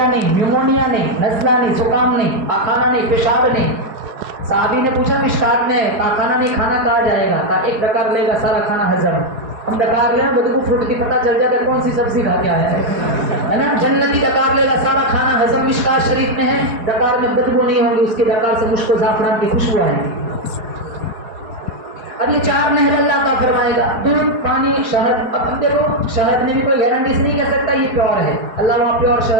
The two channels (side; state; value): left; late; 4.7 ms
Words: نہیں، نیمونیا نہیں، نزلہ نہیں، زکام نہیں، پاخانہ نہیں، پیشاب نہیں. صحابی نے پوچھا مشکات میں پاخانہ نہیں کھانا کہا جائے گا؟ کہا ایک ڈکار لے گا سارا کھانا ہضم. ہم ڈکار لیں بدبو پھوٹتی پتہ چل جاتا ہے کون سی سبزی کھا کے آیا ہے نا. جنتی ڈکار لے گا سارا کھانا ہضم. مشکات شریف میں ہے ڈکار میں بدبو نہیں ہوگی، اس کے ڈکار سے مشک و زعفران کی خوشبو آئے گی. اب یہ 4 نہر اللہ کا فرمائے گا. دودھ، پانی، شہد. اب ہم دیکھو شہد میں بھی کوئی گارنٹی سے نہیں کہہ سکتا یہ پیور ہے. اللہ وہاں پیور